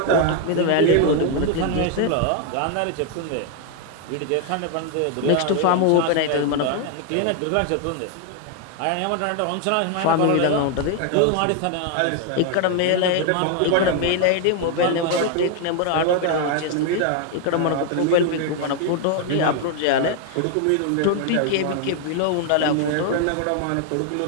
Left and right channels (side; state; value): both; different; correlation 0.00